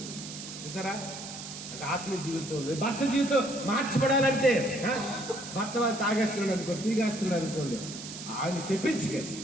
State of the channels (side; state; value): right; noise; hiss, 10 dB below the sound